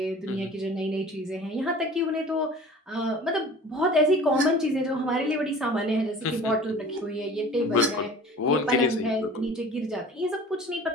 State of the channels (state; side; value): normal; both; correlation 0.44